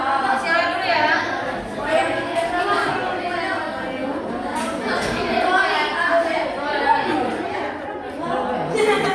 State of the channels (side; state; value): both; identical; correlation 1.00